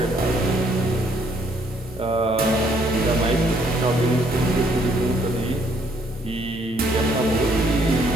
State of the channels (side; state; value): both; normal; correlation 0.67